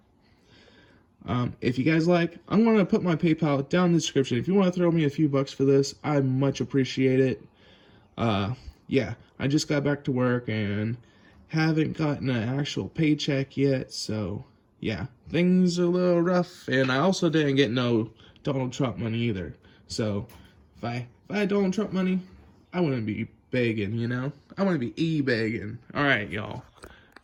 If you guys like, I'm going to put my PayPal down in the description. If you want to throw me a few bucks for this, I much appreciate it. Yeah, I just got back to work and haven't gotten an actual paycheck yet. So, yeah, things are a little rough. And I also didn't get no Donald Trump money either. So, if I had Donald Trump money, I wouldn't be begging, you know? I wouldn't be e-begging. Alright, y'all.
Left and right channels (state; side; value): identical; both; correlation 1.00